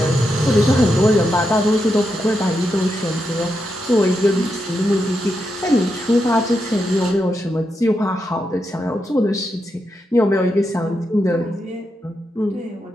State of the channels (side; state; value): both; normal; correlation 0.85